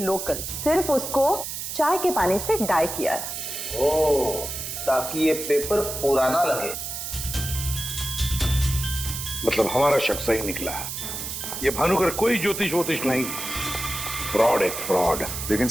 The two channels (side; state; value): right; noise; hiss, 6 dB below the sound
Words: सिर्फ उसको चाय के पानी से डाई किया है। ओह, ताकि ये पेपर पुराना लगे। मतलब हमारा शक सही निकला है। ये भानुकर कोई ज्योतिष नहीं, फ्रॉड है, फ्रॉड। लेकिन